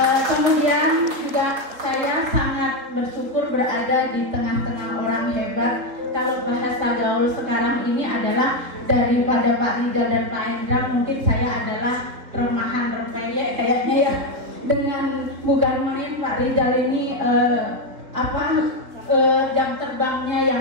Kemudian juga saya sangat bersyukur berada di tengah-tengah orang hebat. Kalau bahasa gaul sekarang ini adalah daripada Pak Rizal dan Pak Hendra, mungkin saya adalah remahan rempeyek kayaknya ya. Dengan bukan main Pak Rizal ini jam terbangnya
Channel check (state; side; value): late; left; 4.1 ms